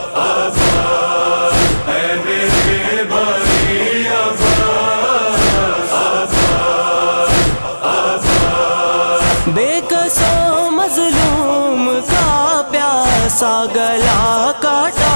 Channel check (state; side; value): inverted; both; correlation -1.00